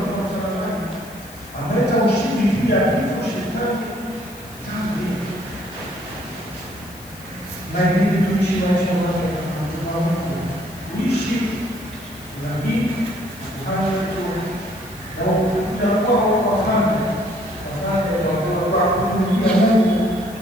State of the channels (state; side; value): noise; left; hiss, 19 dB below the sound